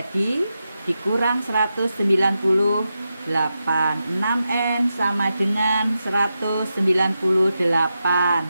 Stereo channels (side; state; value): both; inverted; correlation -0.88